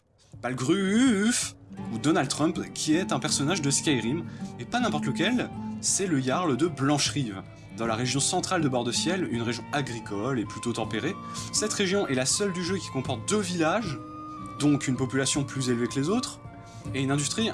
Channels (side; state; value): both; identical; correlation 1.00